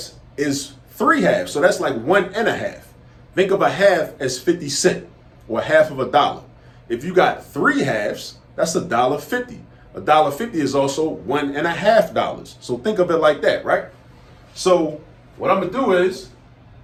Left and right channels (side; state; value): both; identical; correlation 1.00